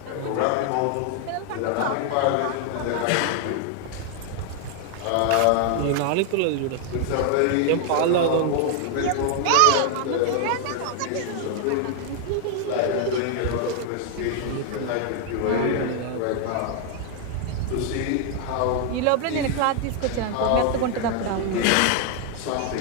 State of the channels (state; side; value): different; both; correlation 0.00